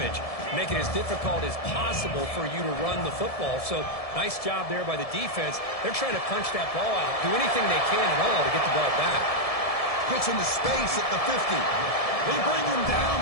make it as difficult as possible for you to run the football. So nice job there by the defense. They're trying to punch that ball out, do anything they can at all to get the ball back. Gets into space at the 50. They bring him down,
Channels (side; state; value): right; late; 1.7 ms